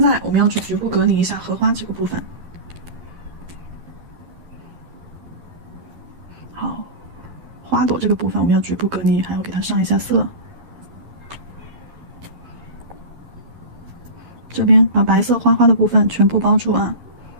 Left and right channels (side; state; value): left; late; 11 ms